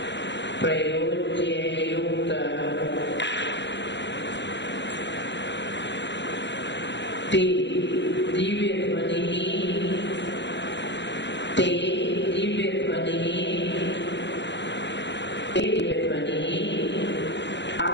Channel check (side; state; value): right; late; 0.52 ms